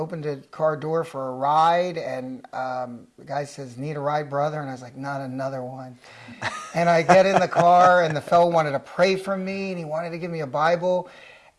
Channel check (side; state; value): both; identical; correlation 1.00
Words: a car door for a ride, and the guy says, "Need a ride, brother?" And I was like, "Not another one." And I get in the car, and the fellow wanted to pray for me, and he wanted to give me a Bible.